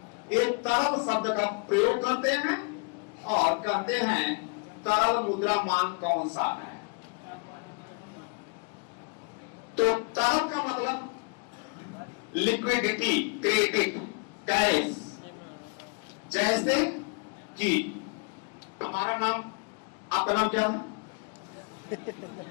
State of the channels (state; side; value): quieter; right; 36.2 dB